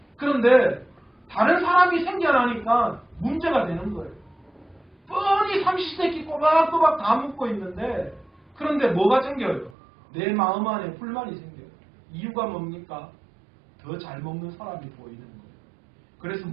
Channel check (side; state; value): left; drops out; at 9.8 s